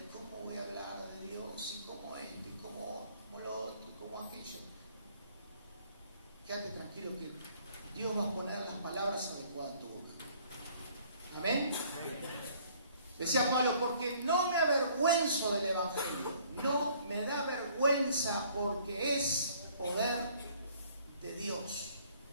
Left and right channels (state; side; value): inverted; both; correlation -0.59